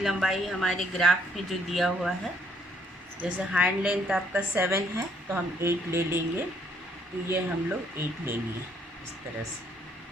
हमारे ग्राफ में जो दिया हुआ है, जैसे हैंड लेंथ आपका 7 है तो हम 8 ले लेंगे। तो ये हम लोग 8 लेंगे इस तरह से,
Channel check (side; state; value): both; normal; correlation 0.68